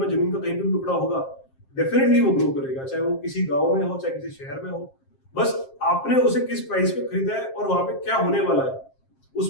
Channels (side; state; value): right; late; 7.5 ms